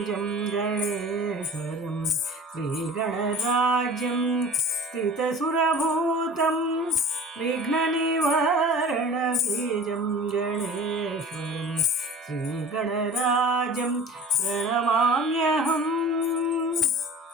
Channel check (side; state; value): both; normal; correlation 0.42